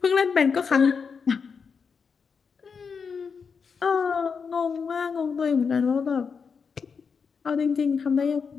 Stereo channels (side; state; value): right; quieter; 5.8 dB